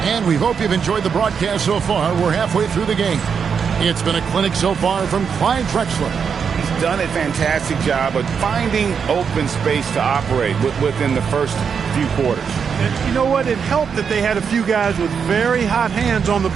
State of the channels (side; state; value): left; quieter; 6.6 dB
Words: And we hope you've enjoyed the broadcast so far. We're halfway through the game. It's been a clinic so far from Clyde Drexler. He's done a fantastic job of finding open space to operate within the first few quarters. And you know what? It helped that they had a few guys with very hot hands on the